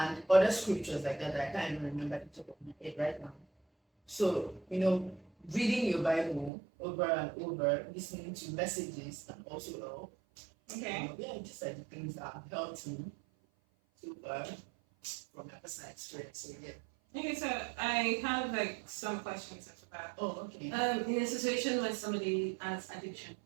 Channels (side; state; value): left; drops out; at 6.5 s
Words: other scriptures like that I can't even remember the top of my head right now. So, reading your Bible over and over, listening to messages can also help. Okay. Yeah, just like the things that have helped me so far from my personal experience. So yeah. Okay, so I have like some questions after that. Oh, okay. In a situation when somebody has addiction,